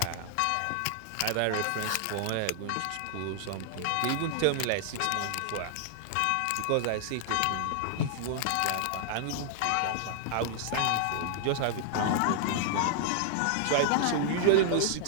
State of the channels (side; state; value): both; different; correlation -0.01